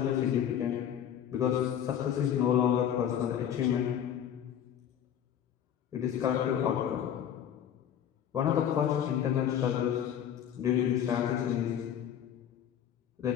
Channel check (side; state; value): right; quieter; 9.6 dB